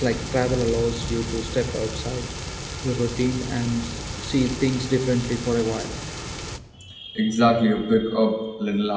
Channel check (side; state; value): both; identical; correlation 1.00